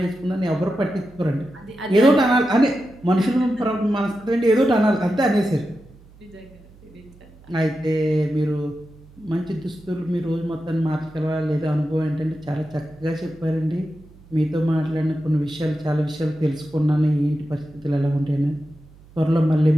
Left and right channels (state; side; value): noise; right; hum, 24 dB below the sound